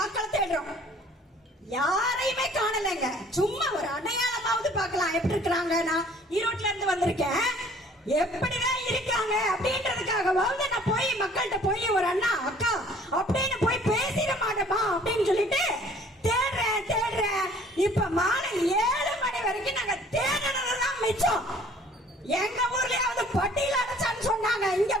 தேடுறோம். யாரையுமே காணலைங்க. சும்மா ஒரு அடையாளமாவது பார்க்கலாம் எப்படி இருக்கிறாங்க. நான் ஈரோட்ல இருந்து வந்திருக்கேன், எப்படிதான் இருக்காங்க அப்படின்றதுக்காகவாவது நான் போய் மக்கள்கிட்ட போய் ஒரு அண்ணா அக்கா அப்படின்னு போய் பேசிட மாட்டோமா அப்படின்னு சொல்லிட்டு தேடுறேன். இப்ப மாலை 7 மணி வரைக்கும் நாங்க தேடுனதுதான் மிச்சம். எங்க ஊர்லயாவது பட்டியல அடைச்சான்னு சொன்னாங்க. இங்க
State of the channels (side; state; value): both; normal; correlation 0.54